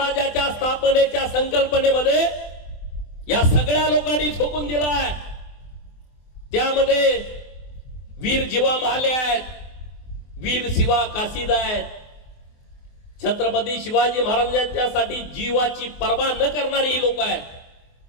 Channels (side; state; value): right; late; 24 ms